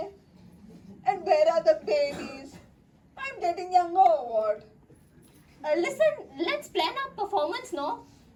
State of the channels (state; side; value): identical; both; correlation 1.00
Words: And where are the babies? I'm getting younger or what? Listen, let's plan our performance, no?